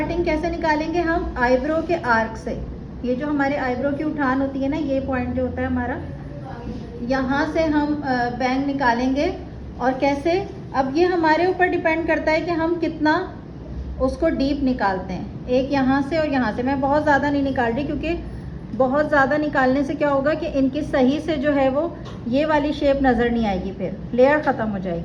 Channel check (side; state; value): both; identical; correlation 1.00